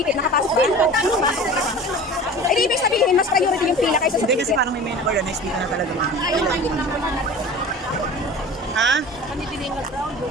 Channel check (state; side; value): normal; both; correlation 0.38